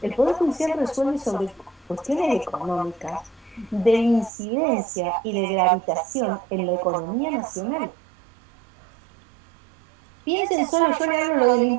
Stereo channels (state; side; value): drops out; left; at 4.3 s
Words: El Poder Judicial resuelve sobre cuestiones económicas, de incidencia y de gravitación en la economía nacional. Piensen solo, yo le hablo lo del